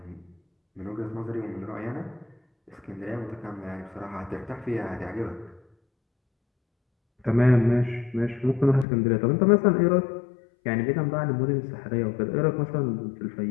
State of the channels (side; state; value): right; drops out; at 8.8 s